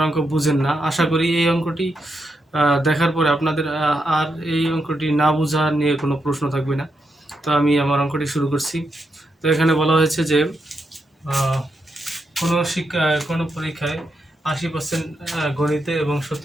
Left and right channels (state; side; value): normal; both; correlation 0.83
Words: অঙ্ক বুঝেন না, আশা করি এই অঙ্কটি দেখার পরে আপনাদের আর এই অঙ্কটি না বোঝা নিয়ে কোনো প্রশ্ন থাকবে না। তো আমি আমার অঙ্কটি শুরু করছি। তো এখানে বলা হয়েছে যে কোনো পরীক্ষায় 80% গণিতে এবং